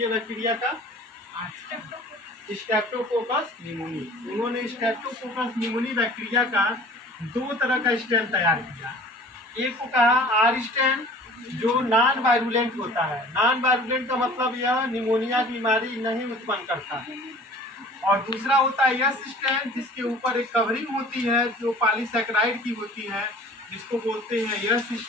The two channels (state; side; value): normal; both; correlation 0.47